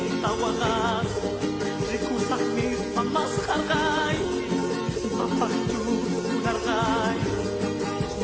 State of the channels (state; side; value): identical; both; correlation 1.00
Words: wagas, rikusah mis pamas hargay, mapakju nargay,